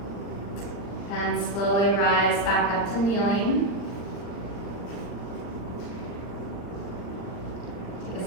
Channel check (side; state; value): right; late; 40 ms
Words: And slowly rise back up to kneeling. Take a